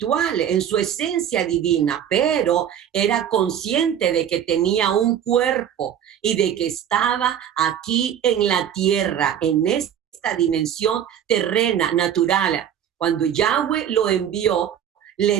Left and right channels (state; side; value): quieter; left; 9.4 dB